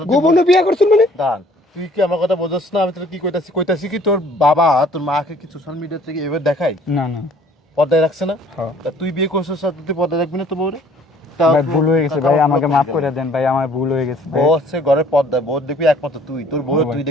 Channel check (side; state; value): both; normal; correlation 0.57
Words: তুই গোপনে বিয়ে করছেন মানে? দান, তুই কি আমার কথা বোঝাস না? আমি তোর কি কইতাছি কি তোর বাবা তোর মাকে কি সোশ্যাল মিডিয়া থেকে এবার দেখাই, না না পর্দায় রাখছে না? হ্যাঁ তা তুই বিয়ে করছিস আর তুই পর্দায় রাখবি না তো বউরে? ভাই ভুল হয়ে গেছে ভাই আমাকে মাফ করে দেন ভাই আমার ভুল হয়ে গেছে ভাই বউ হচ্ছে ঘরের পর্দায়, বউ দেখবি একমাত্র তুই, তোর বউ হ্যাঁ ভাই। তুই